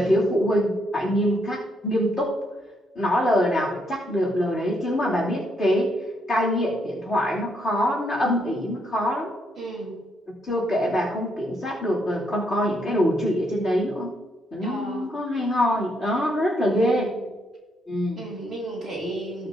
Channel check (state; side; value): normal; both; correlation 0.75